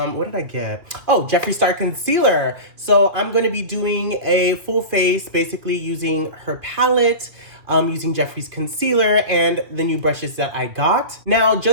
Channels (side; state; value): left; late; 2.2 ms